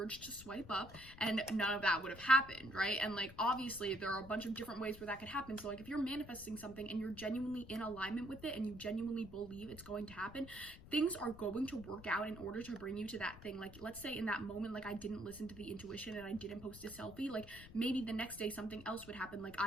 to swipe up, and none of that would have happened, right? And like obviously there are a bunch of different ways where that could happen. So like if you're manifesting something and you're genuinely in alignment with it and you genuinely believe it's going to happen, things are going to work out in order to bring you to that thing. Like let's say in that moment, like I didn't listen to the intuition and I didn't post a selfie, like maybe the next day something else would happen. Like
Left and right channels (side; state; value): left; noise; rumble, 16 dB below the sound